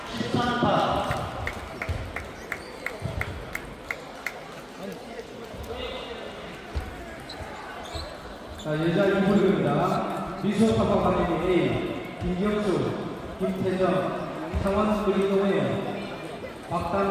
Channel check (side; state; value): both; identical; correlation 1.00